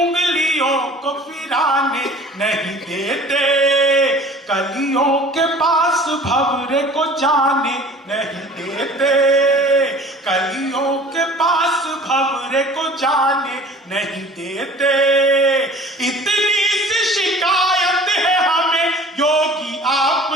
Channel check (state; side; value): normal; both; correlation 0.46